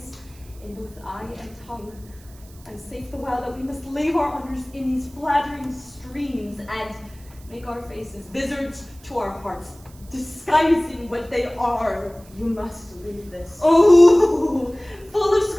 in both eye and tongue, and safe the while that we must lave our honors in these flattering streams, and make our faces vizards to our hearts, disguising what they are. You must leave this. Oh, full of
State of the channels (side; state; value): right; noise; hiss, 25 dB below the sound